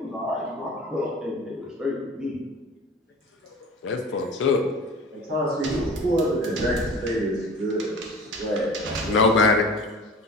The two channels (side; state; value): both; normal; correlation 0.39